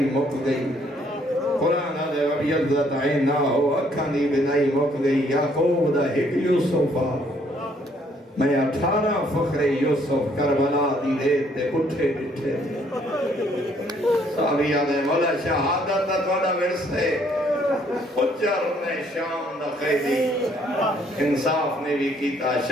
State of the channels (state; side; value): normal; both; correlation 0.65